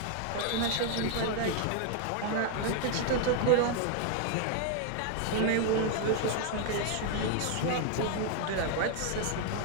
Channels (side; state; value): both; different; correlation 0.00